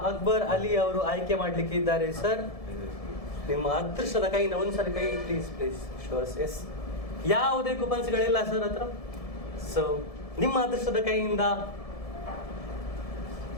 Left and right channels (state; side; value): late; right; 1.7 ms